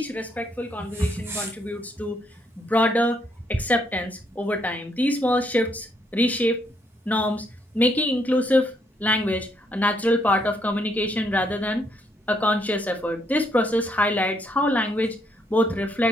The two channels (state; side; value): normal; both; correlation 0.73